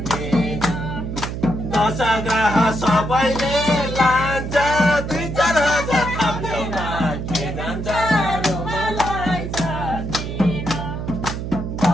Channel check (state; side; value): noise; right; hum, 5 dB below the sound